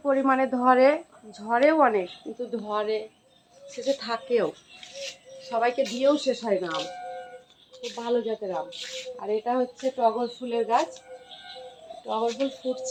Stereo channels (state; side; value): identical; both; correlation 1.00